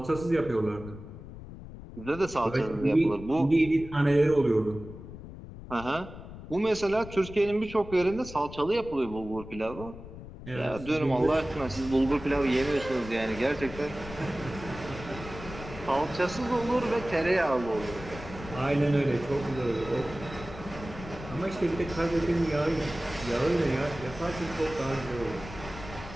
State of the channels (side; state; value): left; noise; rumble, 13 dB below the sound